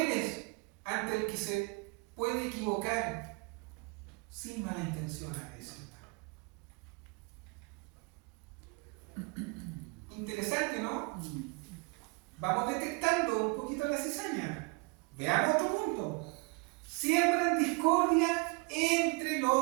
ante el que se puede equivocar sin mala intención a veces. Interesante, ¿no? Vamos detectando un poquito la cizaña. Veamos otro punto. Siembran discordia entre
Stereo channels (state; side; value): quieter; left; 29.0 dB